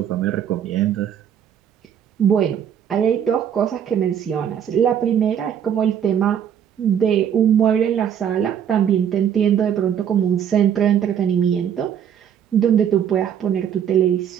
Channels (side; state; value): left; quieter; 9.0 dB